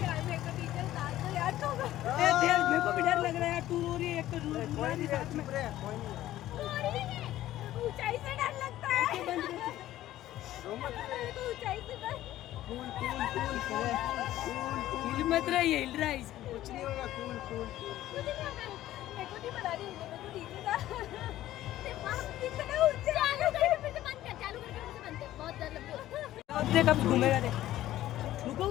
यार तो मेरे को भी डर लग रहा है यार, तू रो रही है एक तो रूरी साथ में। ऊंचाई से डर लगता है। ऊंचाई से डर। हिल मत रहा है, हिल रहा है इसको। कुछ नहीं होगा, कूल कूल कूल। मेरे को नहीं बता रही, मेरे को नीचे था। बहुत डर लगता है। अब देख अब घूमेगा देख। रुको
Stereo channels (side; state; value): right; quieter; 14.1 dB